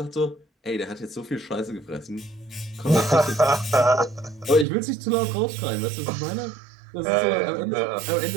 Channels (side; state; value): left; drops out; at 4.7 s